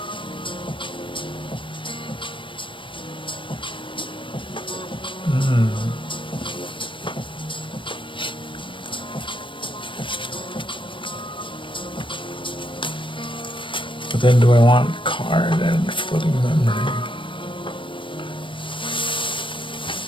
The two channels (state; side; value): late; right; 0.25 ms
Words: But then do I want card and floating memory?